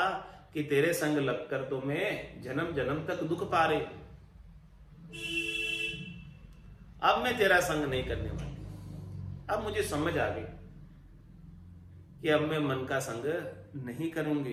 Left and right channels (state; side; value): identical; both; correlation 1.00